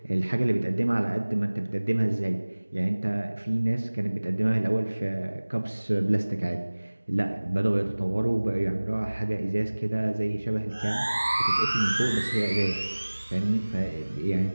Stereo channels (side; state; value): both; inverted; correlation -1.00